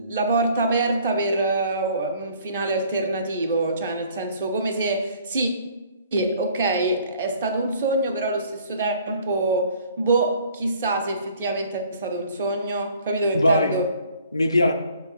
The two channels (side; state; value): both; inverted; correlation -0.56